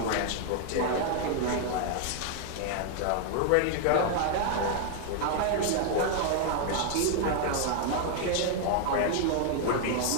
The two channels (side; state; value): both; different; correlation 0.00